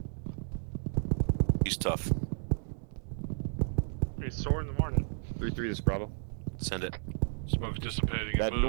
He's tough. He's sore in the morning. 3-3, this is Bravo. Send it. Smoke's dissipating and That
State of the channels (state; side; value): silent; left; digital silence